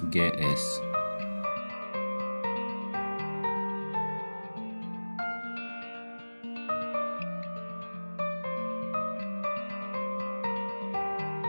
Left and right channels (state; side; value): inverted; both; correlation -1.00